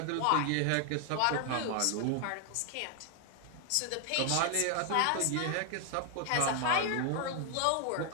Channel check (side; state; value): both; different; correlation 0.00